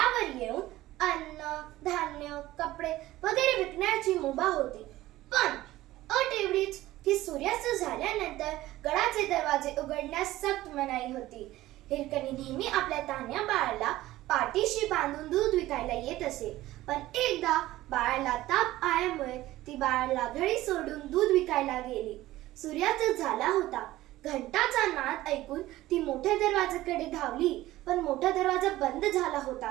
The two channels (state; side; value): quieter; left; 16.2 dB